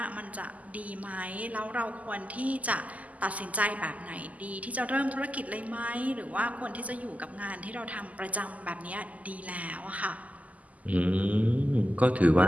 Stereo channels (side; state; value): left; late; 0.075 ms